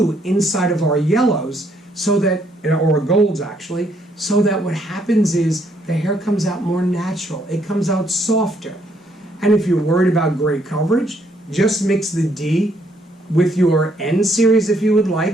inside of our yellows, so that, or golds actually, so that what happens is the hair comes out more natural. It comes out softer. And if you're worried about gray coverage, just mix the D with your N series if you would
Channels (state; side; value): normal; both; correlation 0.70